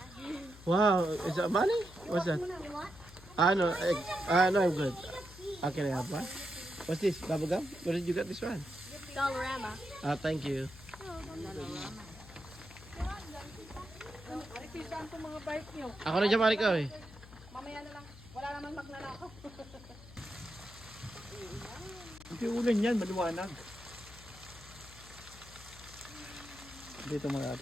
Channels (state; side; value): noise; left; hum, 18 dB below the sound